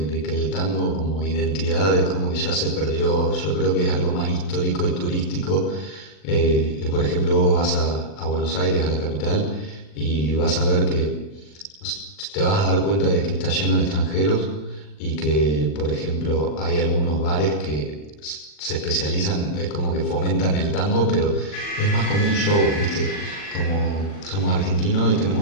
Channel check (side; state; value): right; late; 40 ms